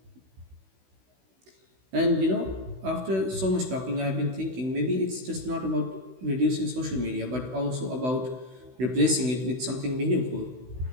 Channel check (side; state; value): left; late; 16 ms